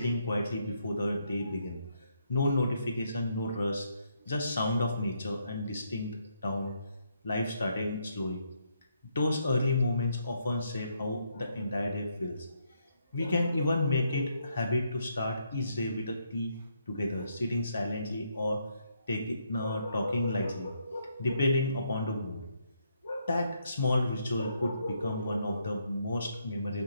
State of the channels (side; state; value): both; inverted; correlation -0.75